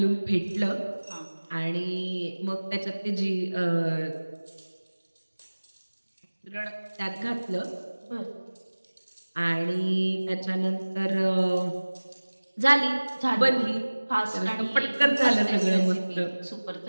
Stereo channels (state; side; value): inverted; both; correlation -1.00